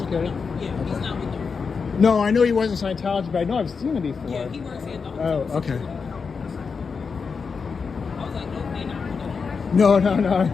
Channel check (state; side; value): quieter; right; 5.4 dB